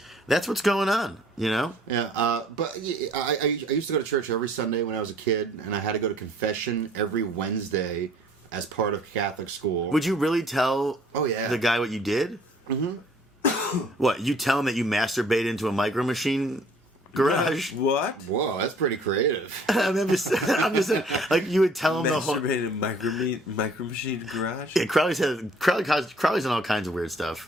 that's what's going on, you know? Yeah, but yeah, I used to go to church every Sunday when I was a kid, and I had to go to confession every Wednesday as part of Catholic school. Would you really tell Oh, yeah. the guy what you did? Mm-hmm. What, you tell him that you masturbate into a micro machine garage. What? Whoa, that's pretty creative. I'm just saying, like you would tell him the whole. Masturbated micro machine garage? Yeah, Crowley's done all kinds of weird stuff.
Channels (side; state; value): both; normal; correlation 0.56